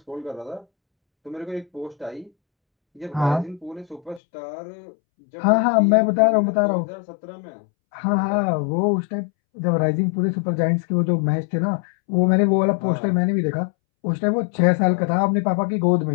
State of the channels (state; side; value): drops out; right; at 4.2 s